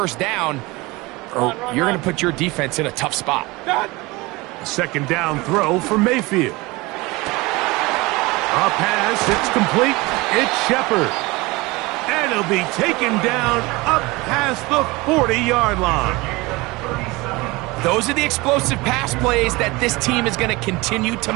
down, or you're going to put your defense in a tough spot. Second down throw for Mayfield. A pass, it's complete. It's Shepard. And he'll be taken down up past the 40-yard line. Those are the explosive pass plays that this team is going to continue to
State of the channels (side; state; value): left; quieter; 22.9 dB